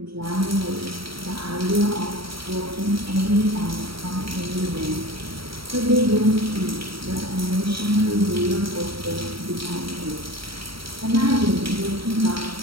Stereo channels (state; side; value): late; left; 0.75 ms